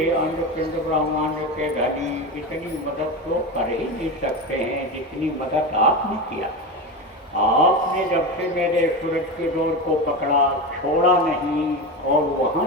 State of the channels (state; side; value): normal; both; correlation 0.21